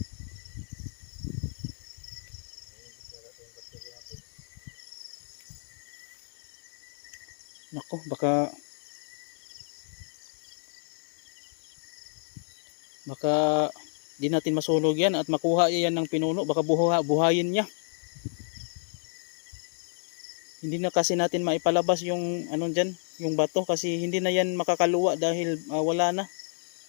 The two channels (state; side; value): silent; right; digital silence